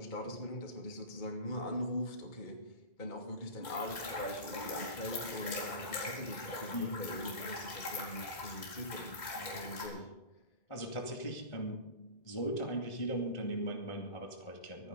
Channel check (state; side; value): late; right; 2.0 ms